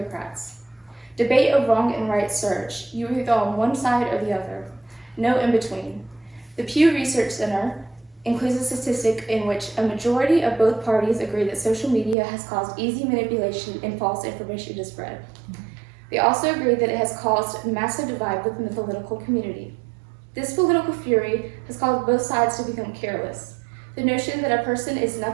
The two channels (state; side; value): drops out; left; at 12.2 s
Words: Debate of wrong and right surge. You are either on one side or the other. No in between. The Pew Research Center includes a statistic in which a majority of both parties agree that social media has caused easy manipulation and false information to spread. They also agree that it has caused a massive divide within the political community. This political fury has caused both sides to become careless. The notion that a person is